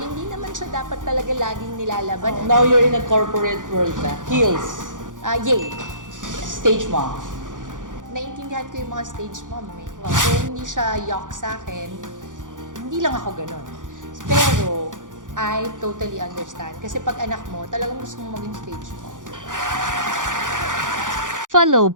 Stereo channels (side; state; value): left; late; 0.88 ms